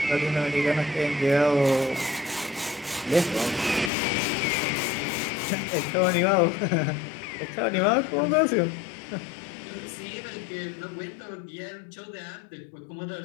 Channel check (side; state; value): right; drops out; at 3.9 s